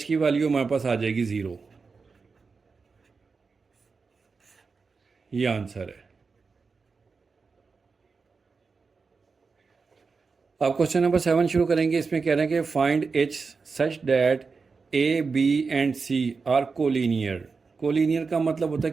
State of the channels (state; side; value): quieter; left; 4.7 dB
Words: की वैल्यू हमारे पास आ जाएगी 0। ये आंसर है। अब क्वेश्चन नंबर 7 शुरू करेंगे। इसमें कह रहे हैं कि find H such that A B and C are collinear. Collinear का मतलब होता